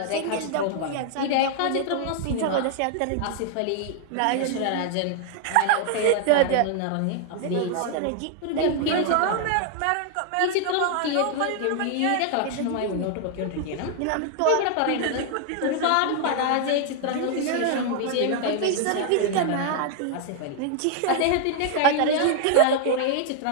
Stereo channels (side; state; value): both; different; correlation 0.00